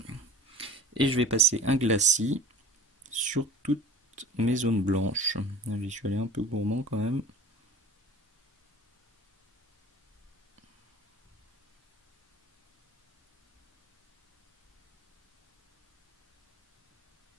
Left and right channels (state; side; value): normal; both; correlation 0.41